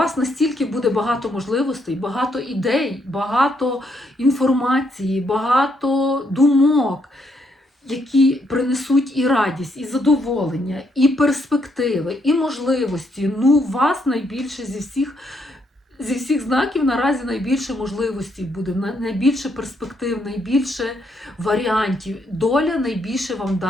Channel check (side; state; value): both; normal; correlation 0.75